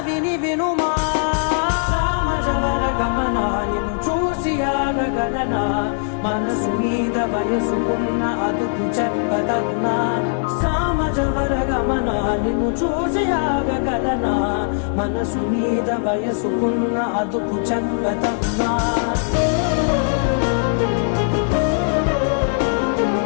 వినుమా సామజవర గమనా నిన్ను చూసి ఆగగలనా మనసు మీద వయసుకున్న అదుపు చెప్పదగునా సామజవర గమనా నిన్ను చూసి ఆగగలనా మనసు మీద వయసుకున్న అదుపు చెప్పదగునా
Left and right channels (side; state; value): right; silent; digital silence